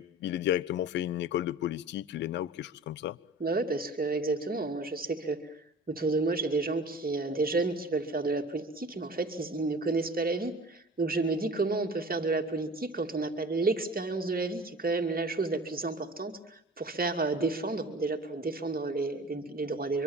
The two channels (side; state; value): both; normal; correlation 0.41